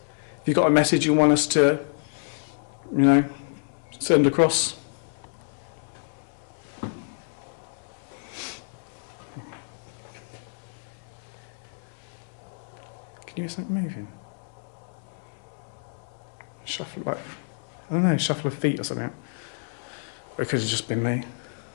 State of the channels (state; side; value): silent; right; 59 dB below the other